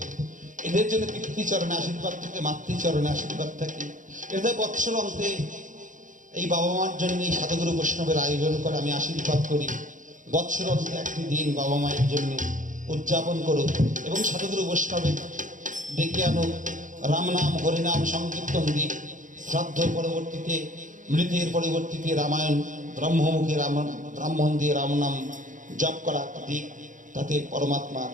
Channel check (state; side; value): late; left; 0.37 ms